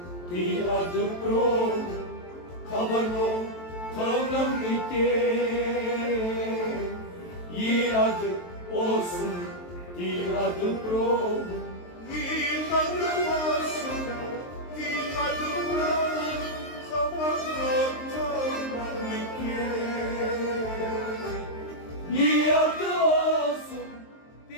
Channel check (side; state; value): right; late; 23 ms